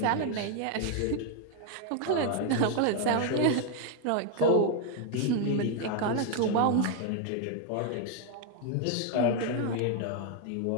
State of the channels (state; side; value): different; both; correlation 0.00